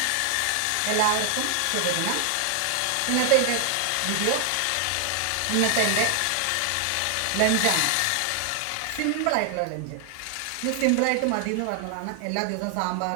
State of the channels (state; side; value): different; both; correlation 0.00